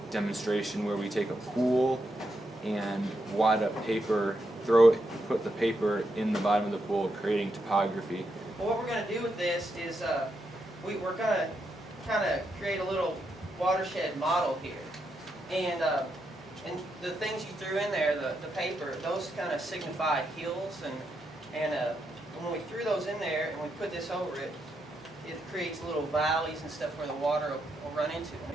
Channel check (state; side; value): normal; both; correlation 0.82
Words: demonstration where we take a pool and wad up paper, put the paper in the bottom of the pool, creating topography. Well, what we're going to do with this is we're going to kind of create a little watershed model here. And the things you threw in there, the paper, those kind of signify hills. And when we threw those in there and we put this over it, it creates little valleys and stuff where the water will run into.